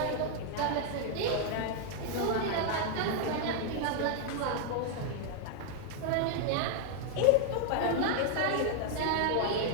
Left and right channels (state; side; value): different; both; correlation 0.00